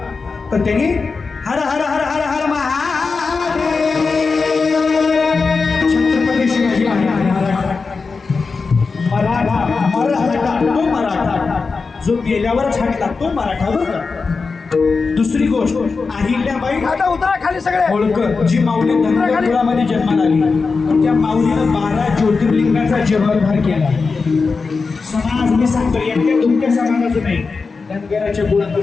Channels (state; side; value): quieter; right; 4.5 dB